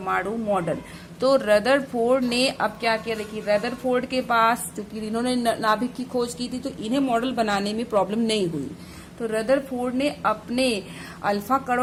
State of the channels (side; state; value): both; identical; correlation 1.00